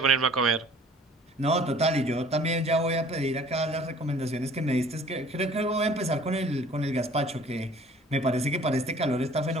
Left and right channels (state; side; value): normal; both; correlation 0.52